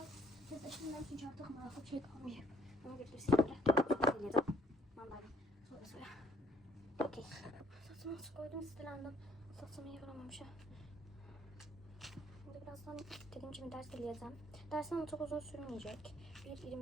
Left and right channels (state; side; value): normal; both; correlation 0.63